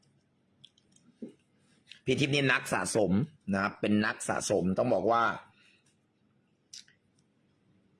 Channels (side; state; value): both; identical; correlation 1.00